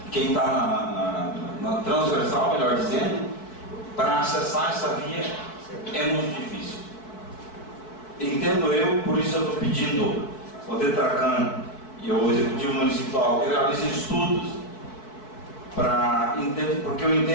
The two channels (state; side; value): late; right; 4.6 ms